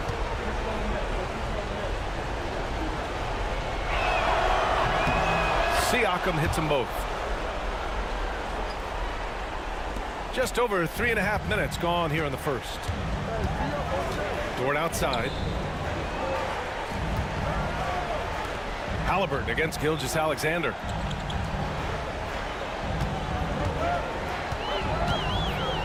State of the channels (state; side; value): identical; both; correlation 1.00